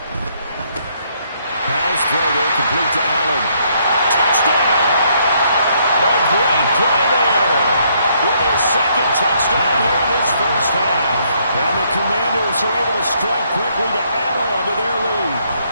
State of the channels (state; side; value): inverted; both; correlation -0.70